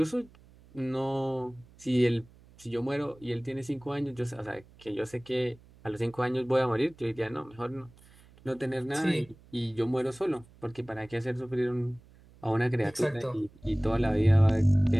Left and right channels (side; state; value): right; noise; hum, 25 dB below the sound